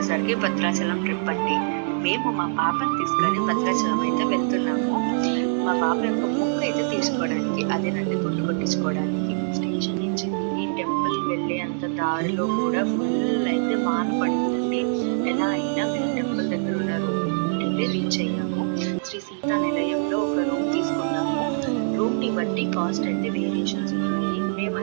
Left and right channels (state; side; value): silent; left; digital silence